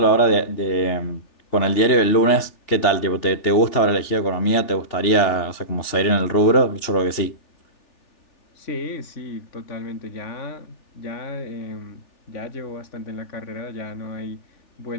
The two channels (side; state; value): right; late; 3.4 ms